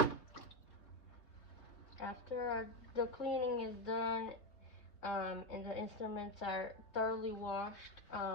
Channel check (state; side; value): late; right; 3.5 ms